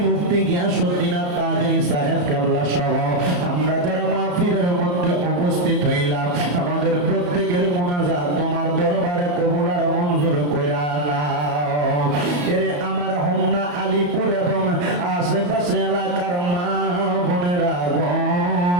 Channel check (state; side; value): late; left; 34 ms